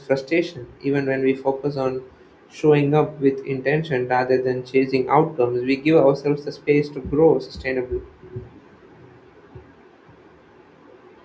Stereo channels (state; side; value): identical; both; correlation 1.00